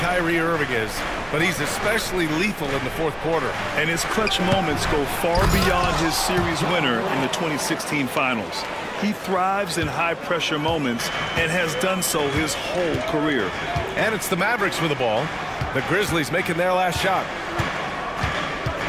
Kyrie Irving is, but he's especially lethal in the fourth quarter. And his clutch moments go far beyond his series winner in the 2016 finals. He thrives in high-pressure moments and has done so his whole career. And it's the Mavericks with the ball. The Grizzlies making their last shot.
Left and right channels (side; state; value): both; identical; correlation 1.00